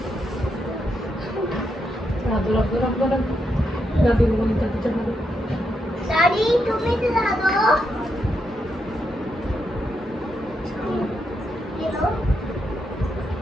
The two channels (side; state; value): both; normal; correlation 0.82